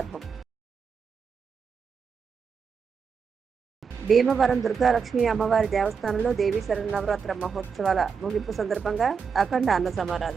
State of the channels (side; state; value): left; quieter; 6.0 dB